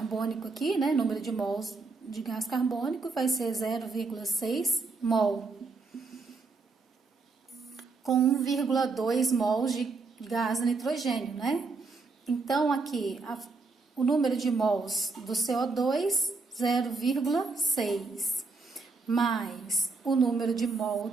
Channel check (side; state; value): left; quieter; 4.0 dB